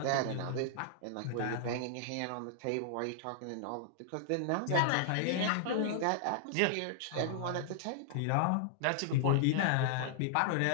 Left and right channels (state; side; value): different; both; correlation -0.01